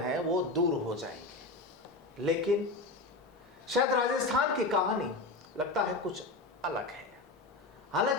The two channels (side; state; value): right; quieter; 3.2 dB